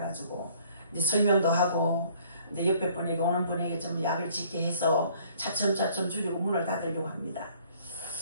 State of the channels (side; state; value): both; inverted; correlation -0.59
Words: 이제 설명도 하고 이제 옆에 분에게 오는 분에게 좀 약을 짓게 해서 차츰차츰 줄이고 문을 닫으려고 합니다.